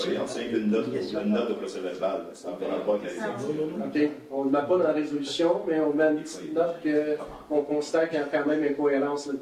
c'est une note au procès-verbal. Ça ne va pas avec la résolution. OK. On ne le met pas dans la résolution, mais on met une petite note qu'on constate qu'il y a quand même incohérence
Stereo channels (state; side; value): identical; both; correlation 1.00